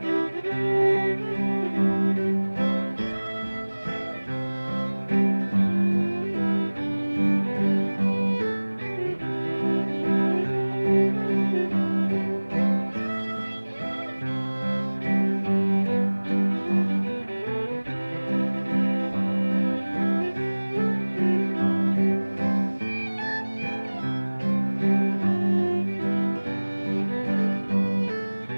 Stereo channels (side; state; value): both; inverted; correlation -1.00